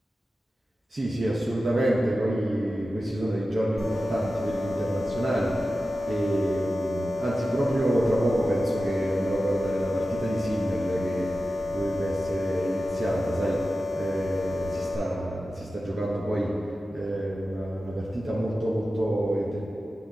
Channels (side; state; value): both; normal; correlation 0.93